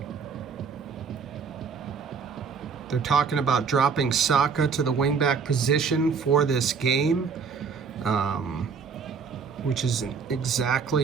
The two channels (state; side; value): quieter; left; 5.7 dB